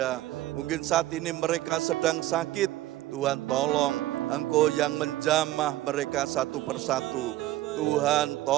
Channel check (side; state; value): left; quieter; 15.3 dB